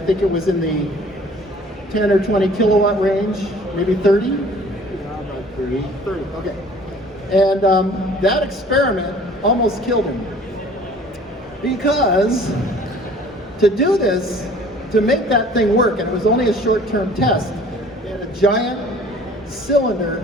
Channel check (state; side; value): normal; both; correlation 0.51